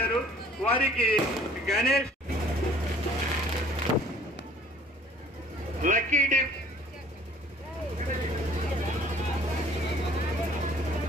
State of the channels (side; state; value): both; normal; correlation 0.53